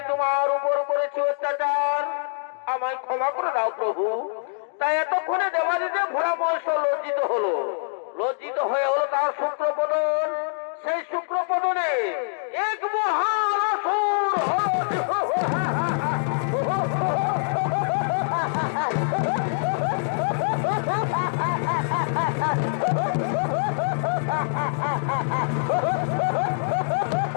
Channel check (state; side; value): silent; right; digital silence